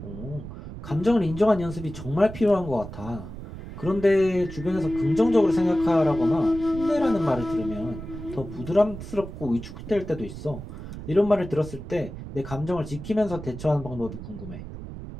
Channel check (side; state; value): right; noise; rumble, 11 dB below the sound